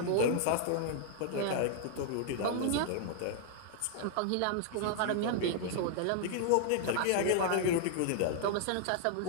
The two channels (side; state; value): both; different; correlation -0.01